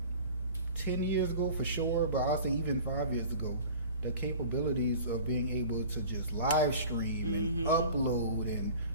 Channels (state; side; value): inverted; both; correlation -0.41